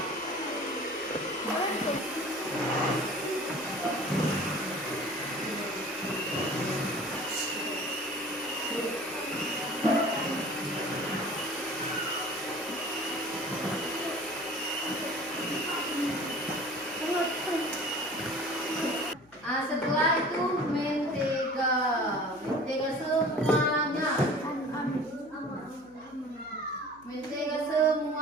Setelah itu mentega semuanya, mentega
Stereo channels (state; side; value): noise; left; hum, 28 dB below the sound